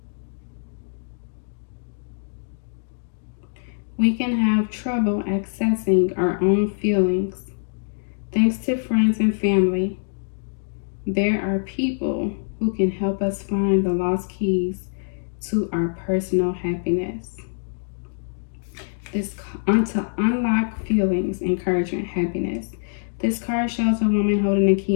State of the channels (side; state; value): right; silent; digital silence